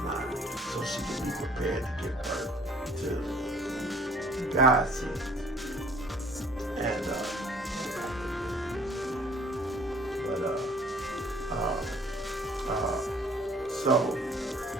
so she could be prepared to give birth to God seed. And so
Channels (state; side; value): normal; both; correlation 0.55